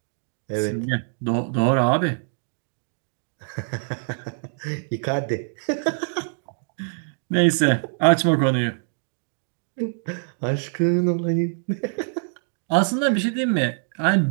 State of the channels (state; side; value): silent; left; digital silence